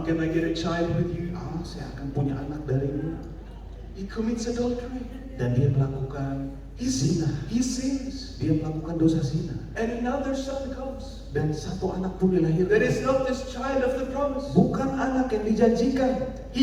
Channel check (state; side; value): identical; both; correlation 1.00